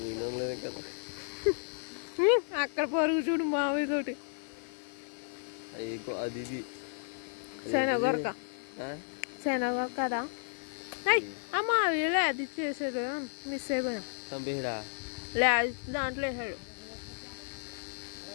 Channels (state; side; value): silent; right; 56 dB below the other